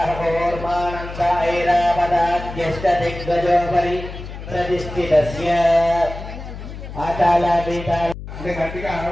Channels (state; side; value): noise; left; hum, 11 dB below the sound